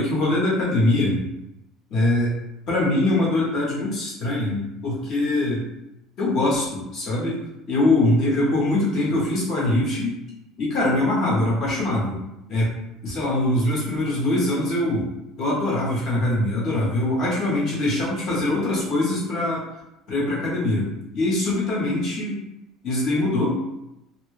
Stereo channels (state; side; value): normal; both; correlation 0.49